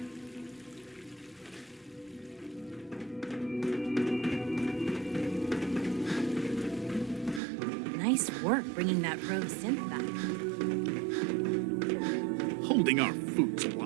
Nice work bringing that rogue synth back. Holding our food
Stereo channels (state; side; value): drops out; left; at 7.4 s